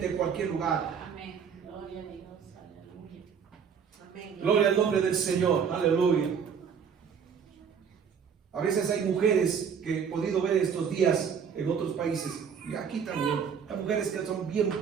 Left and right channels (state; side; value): quieter; left; 6.9 dB